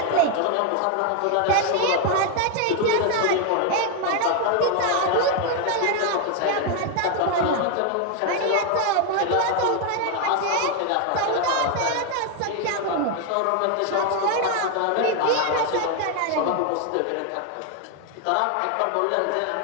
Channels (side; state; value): both; different; correlation 0.01